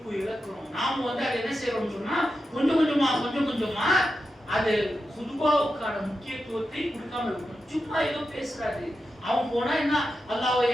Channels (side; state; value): both; normal; correlation 0.89